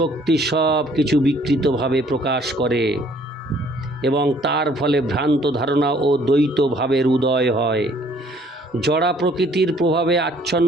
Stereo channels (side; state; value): both; normal; correlation 0.60